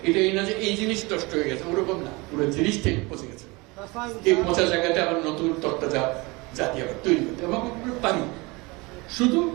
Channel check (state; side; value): quieter; left; 25.1 dB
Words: এটা এই না যে এই জিনিস নষ্ট হয়ে গেছে, ওরকম না, পুরো জিনিসটাই পচে গেছে। এই পচা জায়গাতে আবার নতুন তত্ত্বটা জাতি আবার তৈরি করতে এবং আমরা পারি। শুধু